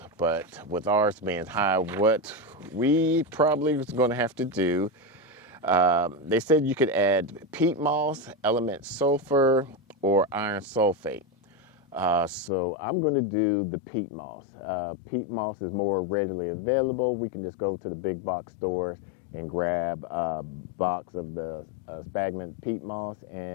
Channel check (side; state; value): right; drops out; at 12.5 s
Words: But with ours being high, what we probably was going to have to do, they said you could add peat moss, element sulfur, or iron sulfate. So I'm going to do the peat moss. Peat moss is more readily available. We can just go to the big box stores and grab a box of the sphagnum peat moss